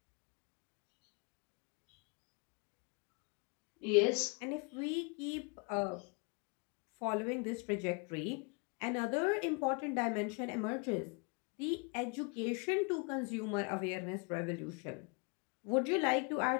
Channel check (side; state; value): right; quieter; 33.6 dB